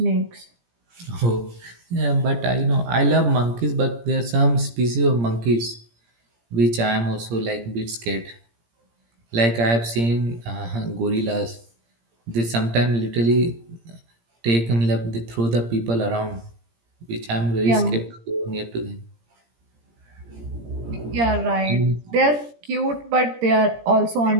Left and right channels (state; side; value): late; left; 17 ms